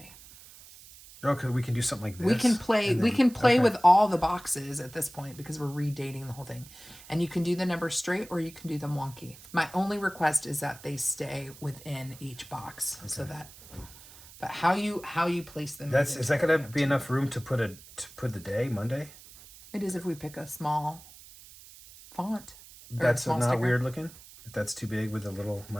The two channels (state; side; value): noise; right; hiss, 20 dB below the sound